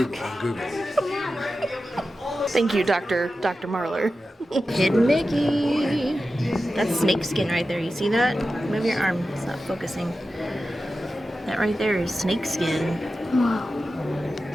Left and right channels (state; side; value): normal; both; correlation 0.93